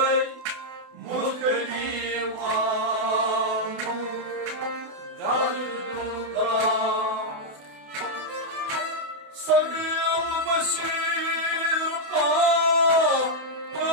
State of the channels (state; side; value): late; left; 28 ms